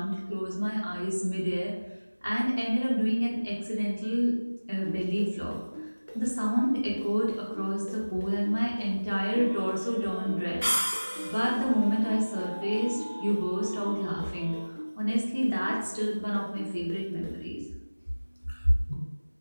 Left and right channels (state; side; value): inverted; both; correlation -1.00